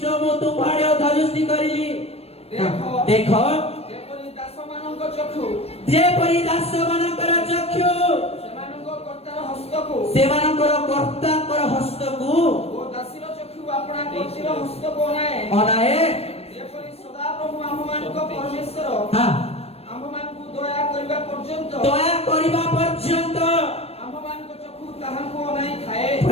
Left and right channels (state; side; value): late; right; 0.29 ms